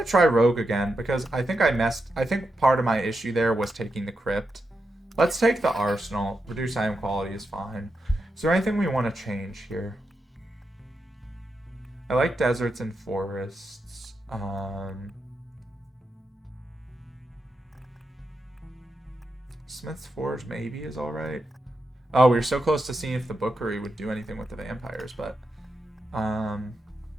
try Rogue again, because I think I think part of my issue there was taking the Crypt. Let's take the Arsenal. Reduce item quality is fine. Is there anything we want to change here? I like deserts and forests. Smith's Forge maybe is alright. Oh, we were so close to seeing if the Bookery would do anything with the vampires, but...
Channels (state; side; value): normal; both; correlation 0.86